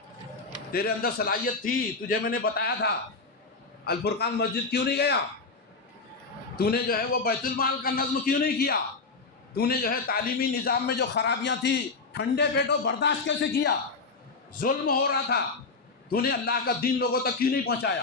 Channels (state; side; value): quieter; right; 4.1 dB